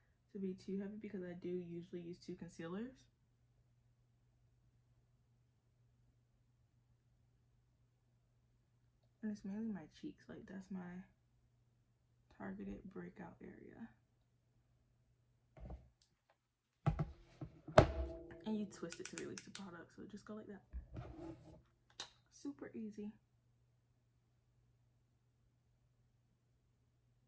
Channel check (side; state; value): both; identical; correlation 1.00